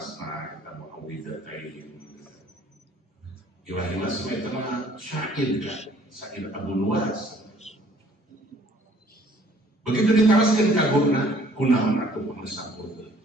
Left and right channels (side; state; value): both; normal; correlation 0.58